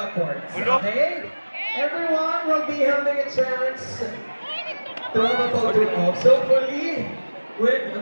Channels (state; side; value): inverted; both; correlation -1.00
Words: Okay? Everyone will be having a chance to have a photo op. So, fully with